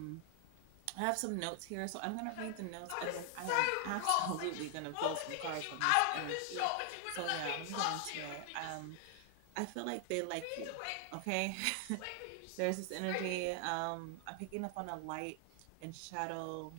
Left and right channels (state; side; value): different; both; correlation 0.00